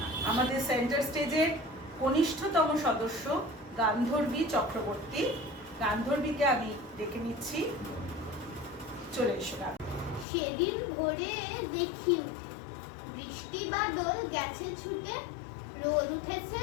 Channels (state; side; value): drops out; right; at 10.2 s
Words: না। আমাদের সেন্টার স্টেজে কনিষ্ঠতম সদস্য গান্ধর্বী চক্রবর্তী। গান্ধর্বীকে আমি ডেকে নিচ্ছি, চলে এসো। সেদিন ভোরে দেখি উঠে, বৃষ্টি বাদল গেছে ছুটে, রোদ উঠেছে